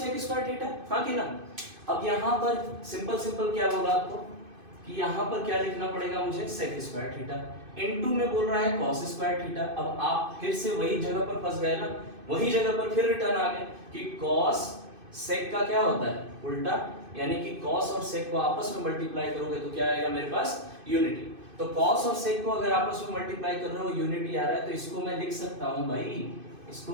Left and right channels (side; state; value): left; late; 2.5 ms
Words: square theta, हाँ कि ना? अब यहाँ पर सिंपल क्या बोला आपको कि यहाँ पर क्या लिखना पड़ेगा मुझे? sec स्क्वायर थीटा इनटू में बोल रहा है cos स्क्वायर थीटा। अब आप फिर से वही जगह पर फंस गए ना, वही जगह पर फिर रिटर्न आ गए कि cos sec का क्या होता है? उल्टा, यानी कि cos और sec को आपस में मल्टीप्लाई करोगे तो क्या आएगा मेरे पास? यूनिटी। तो cos और sec को अगर आपस में मल्टीप्लाई कर रहे हो, यूनिटी आ रहा है, तो इसको मैं लिख सकता हूं भाई,